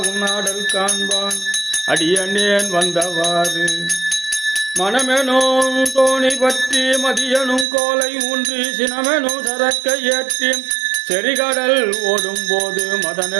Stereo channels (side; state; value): left; drops out; at 7.7 s